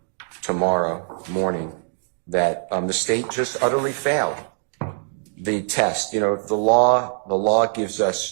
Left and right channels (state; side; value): silent; left; digital silence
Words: tomorrow morning, that the state just utterly failed the test. You know, the law gives